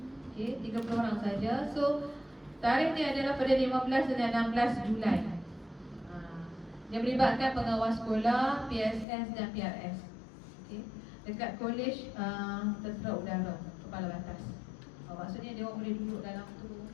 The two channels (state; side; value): drops out; right; at 9.1 s